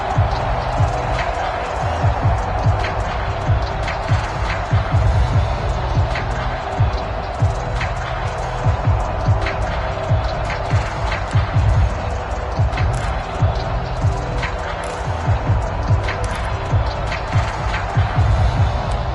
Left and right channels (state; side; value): identical; both; correlation 1.00